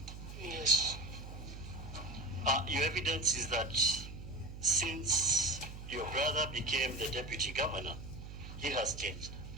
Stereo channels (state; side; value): noise; right; hum, 11 dB below the sound